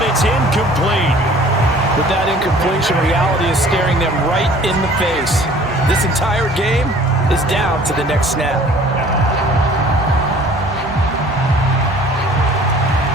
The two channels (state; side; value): normal; both; correlation 0.51